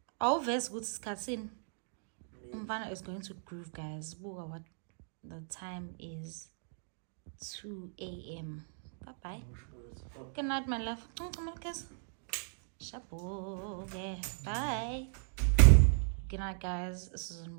Awuvezi ukuthi isikhatsini umfana is going to groove, guys. Buka what the time is. 2 a.m. Bye bye. Good night, my love. Shabu. Bye. Good night, guys. This is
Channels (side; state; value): left; silent; digital silence